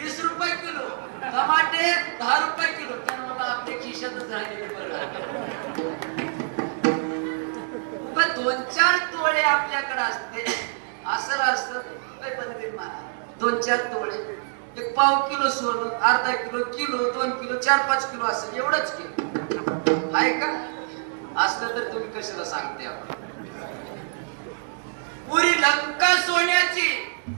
रुपये किलो, टमाटे 10 रुपये किलो. पण मला आपल्या खिशातच राहिलेले बरं. 2-4 तोळे आपल्याकडे असते असं असतं. 2-4 तोळे, 1 पाव किलो सोनं, अर्धा किलो, किलो, 2 किलो, 4-5 किलो असं एवढंच किलो आहे का? असलं तर तुम्ही कशाला सांगते. पुरी लंका सोन्याची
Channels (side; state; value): left; silent; digital silence